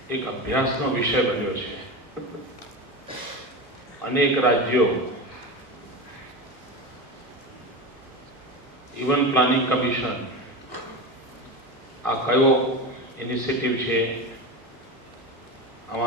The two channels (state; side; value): normal; both; correlation 0.23